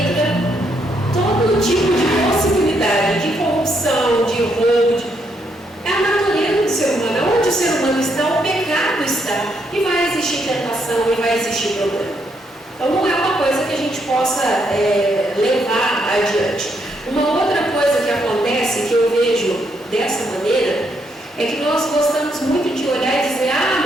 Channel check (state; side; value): normal; both; correlation 0.76